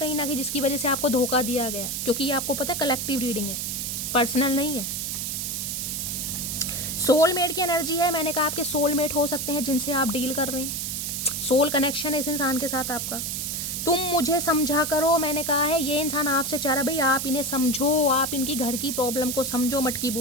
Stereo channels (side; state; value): right; noise; hiss, 3 dB below the sound